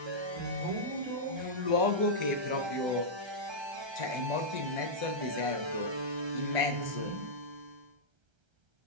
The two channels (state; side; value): late; left; 1.3 ms